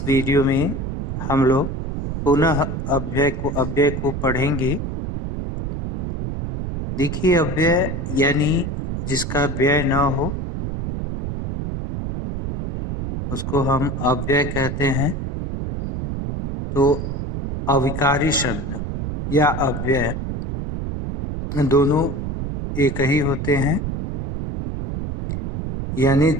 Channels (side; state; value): right; noise; rumble, 4 dB below the sound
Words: वीडियो में हम लोग पुनः अव्यय को पढ़ेंगे। देखिए, अव्यय यानी जिसका व्यय न हो उसको हम अव्यय कहते हैं। तो अविकारी शब्द या अव्यय दोनों एक ही होते हैं, यानी